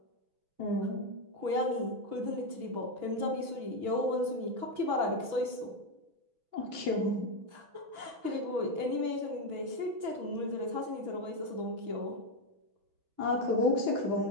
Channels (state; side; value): late; left; 6.1 ms